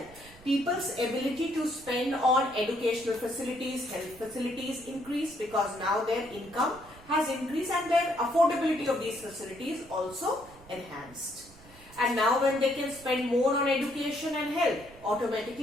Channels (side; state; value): right; noise; rumble, 22 dB below the sound